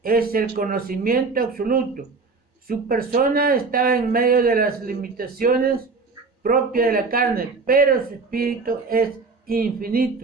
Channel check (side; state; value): left; quieter; 4.2 dB